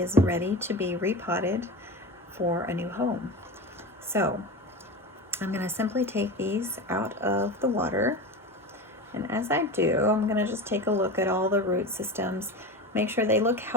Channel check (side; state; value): both; normal; correlation 0.26